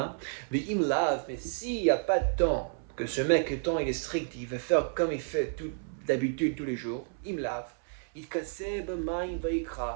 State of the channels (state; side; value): silent; left; 57 dB below the other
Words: Mais s'il n'y a pas de temps, que ce mec, le temps il est strict, il va faire comme il fait d'habitude tous les jours, il